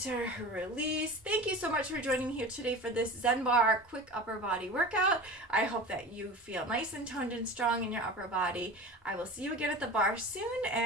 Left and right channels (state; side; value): normal; both; correlation 0.34